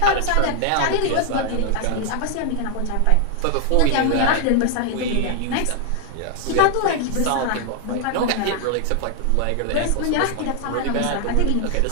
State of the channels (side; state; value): both; different; correlation 0.00